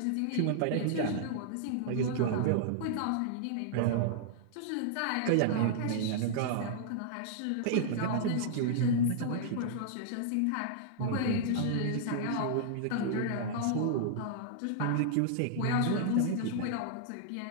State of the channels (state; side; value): different; both; correlation -0.01